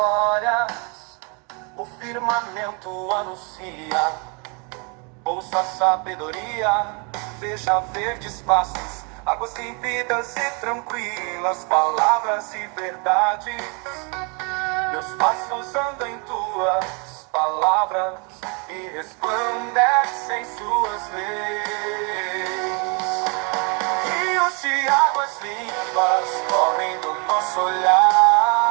o firmamento anuncia. Ouça a sabedoria, veja verdes pastos, águas límpidas e tranquilas, palavras e verdades. Meus passos andam em tuas palavras e resplandecem suas leis. Rios de águas limpas correm do nosso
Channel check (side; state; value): left; quieter; 33.8 dB